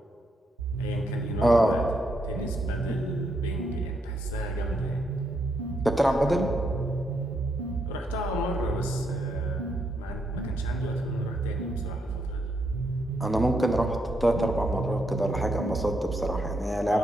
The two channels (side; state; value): both; normal; correlation 0.78